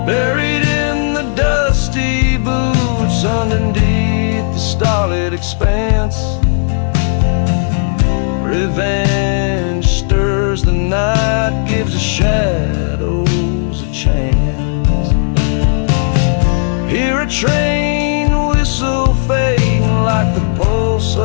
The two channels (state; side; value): silent; right; digital silence